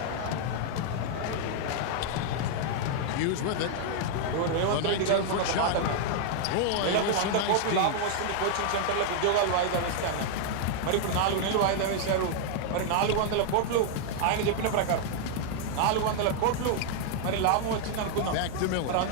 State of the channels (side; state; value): both; different; correlation -0.01